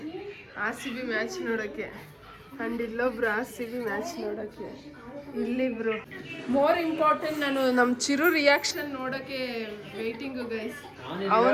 ಆ್ಯಂಡ್ ಇಲ್ಲೊಬ್ರು RCB ಮ್ಯಾಚ್ ನೋಡೋಕ್ಕೆ, ಇಲ್ಲಿಬ್ರು. ಮೋರ್ ಇಂಪಾರ್ಟೆಂಟ್, ನಾನು ನಮ್ಮ ಚಿರು ರಿಯಾಕ್ಷನ್ ನೋಡೋಕ್ಕೆ ವೇಟಿಂಗು ಗೈಸ್.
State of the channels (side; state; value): both; identical; correlation 1.00